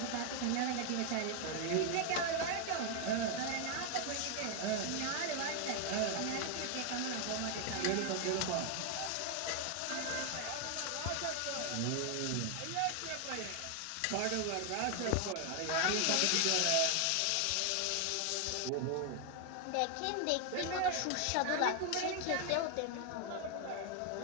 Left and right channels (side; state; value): both; different; correlation 0.01